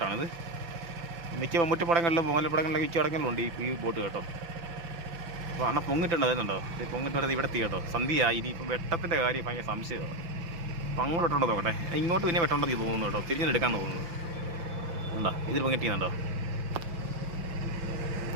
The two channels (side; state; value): left; late; 5.9 ms